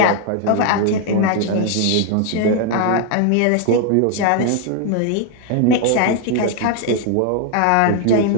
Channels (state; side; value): different; both; correlation 0.01